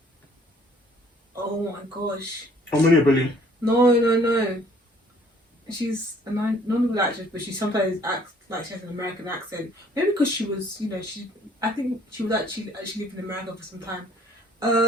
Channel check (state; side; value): normal; both; correlation 0.58